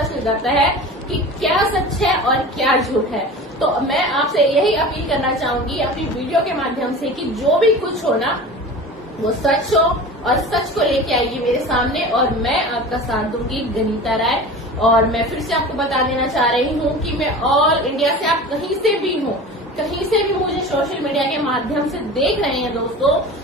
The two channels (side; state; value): both; normal; correlation 0.35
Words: चल जाता है कि क्या सच है और क्या झूठ है। तो मैं आपसे यही अपील करना चाहूंगी अपनी वीडियो के माध्यम से कि जो भी कुछ हो ना वो सच हो और सच को लेके आइए मेरे सामने और मैं आपका साथ दूंगी गनीता राय। और मैं फिर से आपको बता देना चाह रही हूँ कि मैं ऑल इंडिया से, आप कहीं से भी हो, कहीं से भी मुझे सोशल मीडिया के माध्यम से देख रहे हैं दोस्तों,